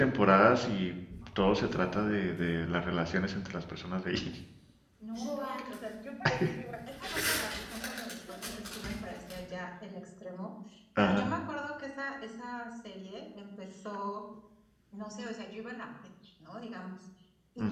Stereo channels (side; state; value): both; identical; correlation 1.00